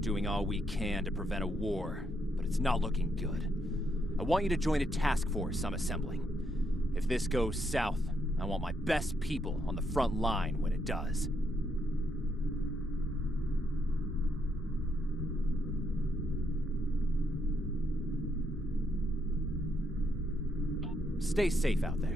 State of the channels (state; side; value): normal; both; correlation 0.77